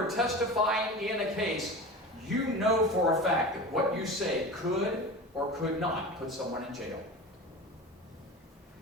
testifying in a case, you know for a fact that what you say could or could not put someone in jail.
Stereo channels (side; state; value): both; normal; correlation 0.31